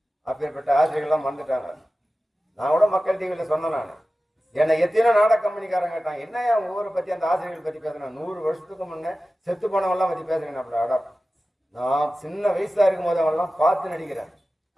அப்பேற்பட்ட ஆசிரியர்கள்லாம் வந்துட்டாங்க. நான் கூட மக்கள் டிவியில் சொன்னேன். நான் என்னை எத்தனை நாடக கம்பெனிக்காரங்க கேட்டாங்க, என்ன ஊரை பற்றி அந்த ஆசிரியர்கள் பற்றி பேசுறேன். 100 வருஷத்துக்கு முன்னே செத்து போனவெல்லாம் பற்றி பேசுறேன். அப்படி அடம் நான் சின்ன வயசா இருக்கும் போது அவெல்லாம் பார்த்து நடிக்கிறேன்.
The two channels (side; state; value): both; normal; correlation 0.95